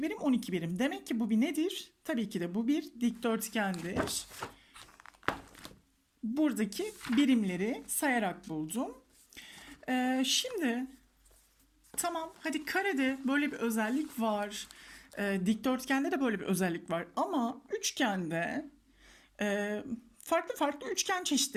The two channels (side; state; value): both; identical; correlation 1.00